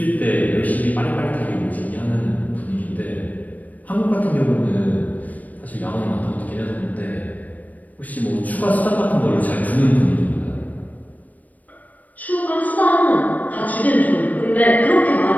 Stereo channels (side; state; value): right; late; 0.076 ms